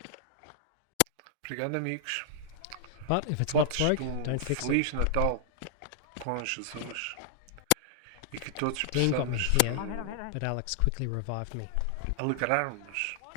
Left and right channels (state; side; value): different; both; correlation -0.01